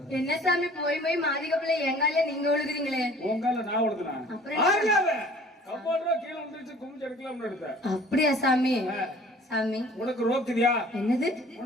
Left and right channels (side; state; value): both; normal; correlation 0.50